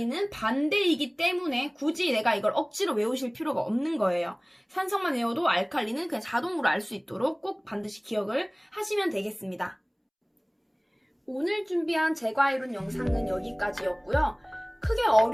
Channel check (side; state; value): both; identical; correlation 1.00